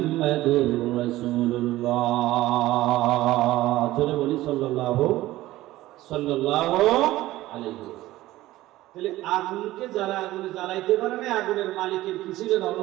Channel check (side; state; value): left; quieter; 16.4 dB